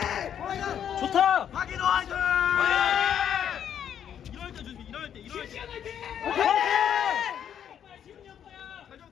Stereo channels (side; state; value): right; quieter; 9.2 dB